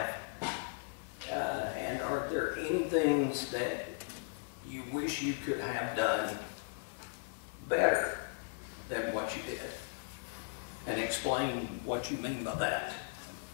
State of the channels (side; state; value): right; silent; 53 dB below the other